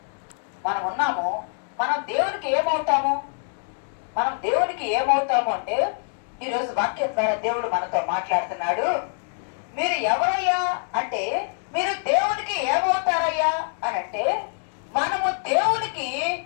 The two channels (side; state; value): right; silent; digital silence